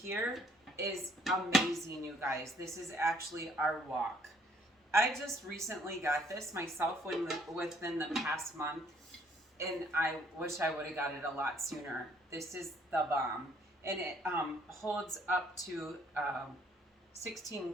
is amazing, you guys. This is actually our wok. I just recently got this myself within the past month, and I wish I would have got it a lot sooner. This is the bomb, and it holds up to 16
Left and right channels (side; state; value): both; normal; correlation 0.64